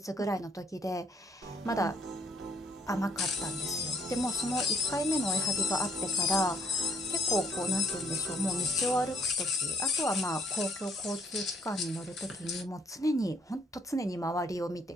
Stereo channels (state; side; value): normal; both; correlation 0.67